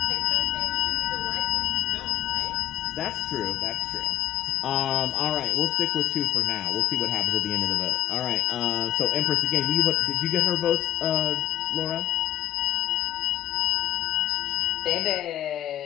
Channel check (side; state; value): right; quieter; 13.6 dB